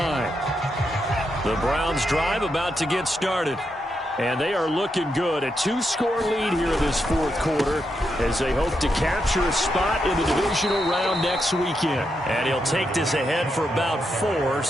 The Browns drive about to get started. And they are looking good. A two-score lead here in this fourth quarter as they hope to capture a spot in the divisional round next weekend. And he'll take this ahead for about 4.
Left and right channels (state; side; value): normal; both; correlation 0.83